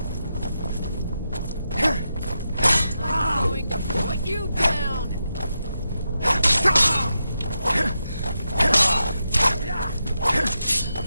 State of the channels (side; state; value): both; inverted; correlation -0.87